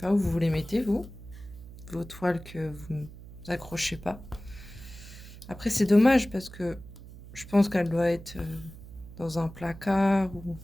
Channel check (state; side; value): noise; right; hum, 16 dB below the sound